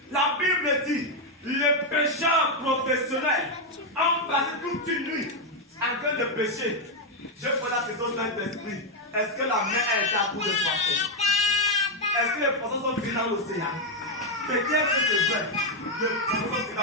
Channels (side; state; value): both; normal; correlation 0.03